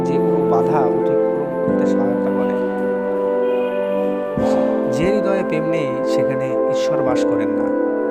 যে কোনো বাধা অতিক্রম করতে সহায়তা করে। যে হৃদয়ে প্রেম নেই সেখানে ঈশ্বর বাস করেন না।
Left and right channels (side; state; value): both; identical; correlation 1.00